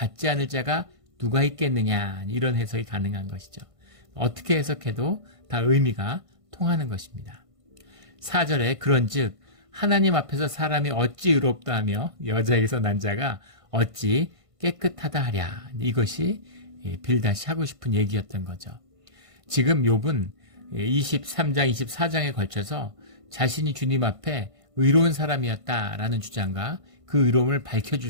않을 자가 누가 있겠느냐, 이런 해석이 가능한 것이죠. 어떻게 해석해도 다 의미가 통하는 것입니다. 4절에 그런즉 하나님 앞에서 사람이 어찌 의롭다 하며 여자에게서 난 자가 어찌 깨끗하다 하랴. 이것이 빌닷이 하고 싶은 얘기였던 거죠. 지금 욥은 23장, 24장에 걸쳐서 자신이 주님 앞에 의로운 사람이었다라는 주장과 그 의로움을 밝혀줄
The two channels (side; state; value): left; late; 1.5 ms